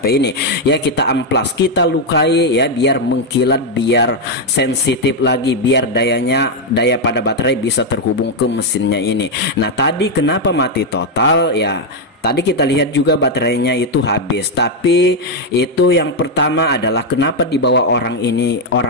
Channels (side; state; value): both; normal; correlation 0.02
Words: ini. Ya, kita amplas, kita lukai ya, biar mengkilat, biar sensitif lagi, biar daya pada baterai bisa terhubung ke mesinnya ini. Nah, tadi kenapa mati total ya? Tadi kita lihat juga baterainya itu habis, tapi itu yang pertama adalah kenapa dibawa orang ini,